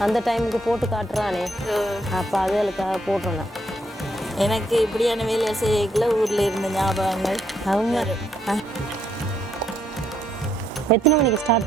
அந்த டைமுக்கு போட்டு காட்டுறானே, அப்போ அதுகளுக்காக போட்டுறேன். எனக்கு இப்படியான வேலை செய்யல ஊரில் இருந்த ஞாபகங்கள். அவங்க எத்தனை மணிக்கு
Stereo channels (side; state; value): both; normal; correlation 0.73